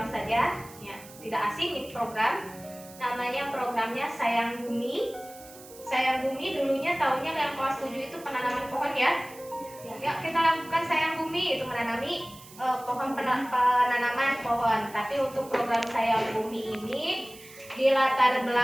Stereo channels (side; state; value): right; noise; hiss, 19 dB below the sound